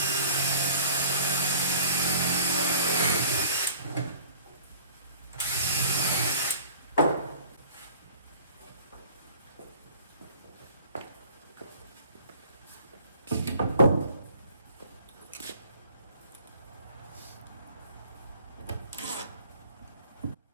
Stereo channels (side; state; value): both; inverted; correlation -0.48